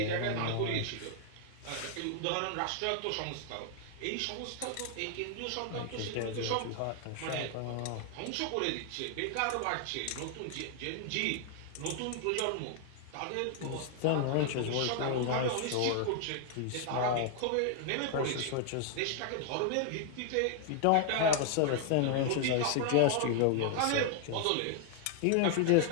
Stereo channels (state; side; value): different; both; correlation 0.00